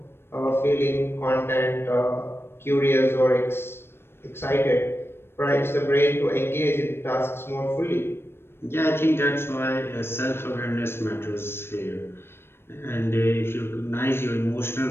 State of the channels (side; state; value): right; late; 0.12 ms